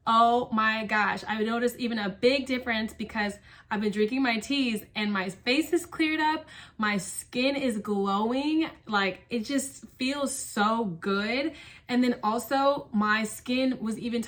oh my gosh, I noticed even a big difference because I've been drinking my teas and my face is cleared up, my skin is glowing, like it just feels so good. And then also my skin was even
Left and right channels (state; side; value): identical; both; correlation 1.00